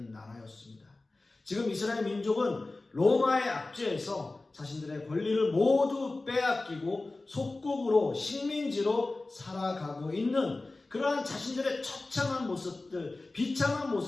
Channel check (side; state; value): right; quieter; 3.2 dB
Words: 나라였습니다. 지금 이스라엘 민족은 로마의 압제에서 자신들의 권리를 모두 빼앗기고 속국으로 식민지로 살아가고 있는 그러한 자신들의 처참한 모습들, 비참한